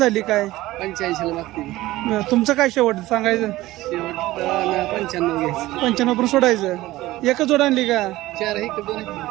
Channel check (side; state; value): left; quieter; 17.3 dB